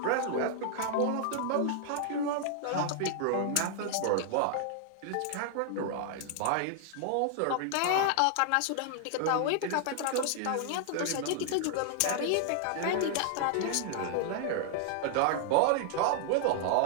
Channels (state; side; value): different; both; correlation -0.01